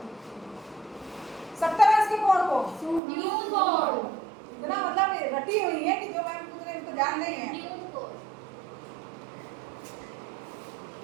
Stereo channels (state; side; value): drops out; left; at 3.0 s